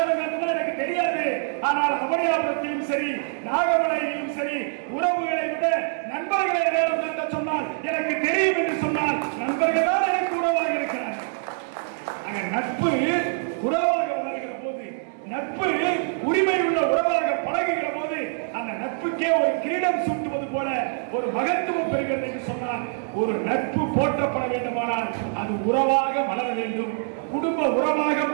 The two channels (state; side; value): silent; left; digital silence